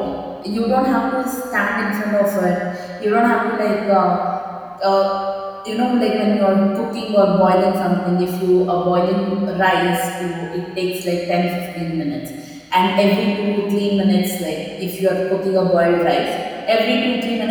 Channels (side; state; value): both; identical; correlation 1.00